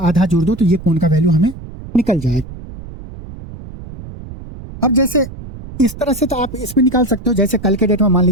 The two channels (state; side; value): noise; right; rumble, 14 dB below the sound